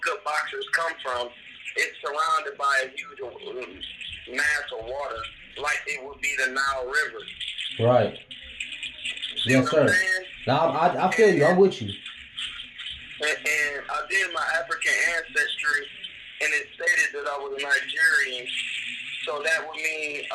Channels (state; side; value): identical; both; correlation 1.00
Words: good boxers come from. It's surrounded by a huge mass of water, like it would be the Nile River. Right. See Yes, sir. Now I feel you. I'm with you. And I did my African ancestry, and it stated that I was a Nigerian. So that would mean